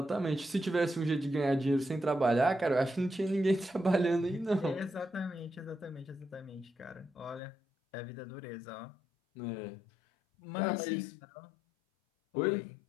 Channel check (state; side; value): drops out; right; at 7.4 s